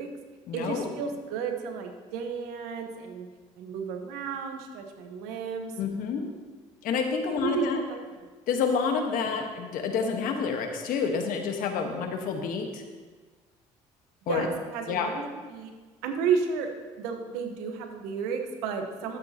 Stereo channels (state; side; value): normal; both; correlation 0.34